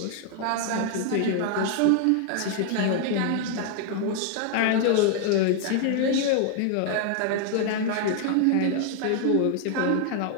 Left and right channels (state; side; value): different; both; correlation 0.00